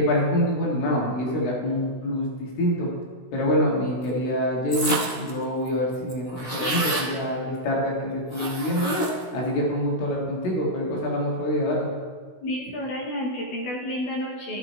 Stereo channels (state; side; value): late; right; 16 ms